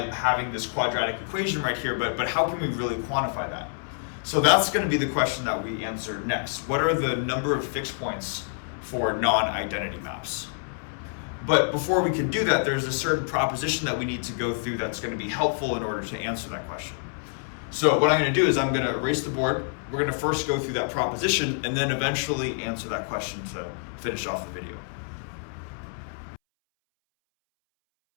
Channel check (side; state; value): right; silent; 60 dB below the other